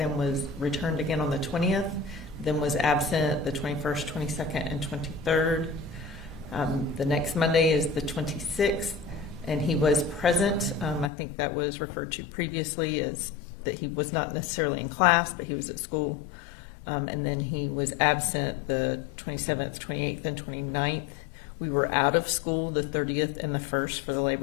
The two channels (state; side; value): drops out; right; at 11.1 s